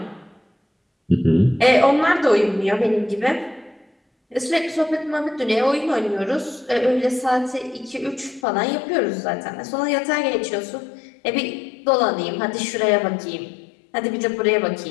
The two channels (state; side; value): drops out; right; at 8.5 s